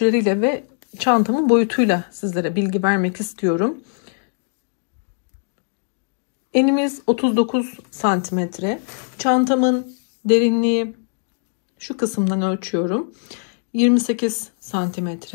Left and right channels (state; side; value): silent; right; digital silence